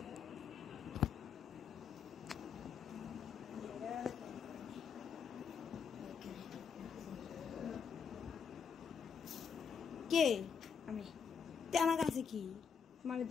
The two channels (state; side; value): quieter; right; 6.6 dB